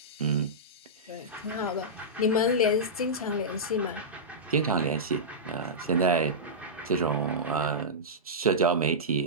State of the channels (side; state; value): both; normal; correlation -0.14